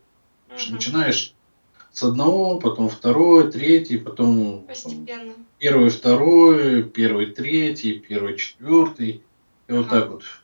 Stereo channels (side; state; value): both; inverted; correlation -1.00